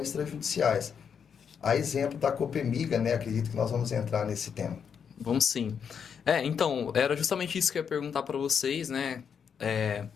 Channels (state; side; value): quieter; right; 7.1 dB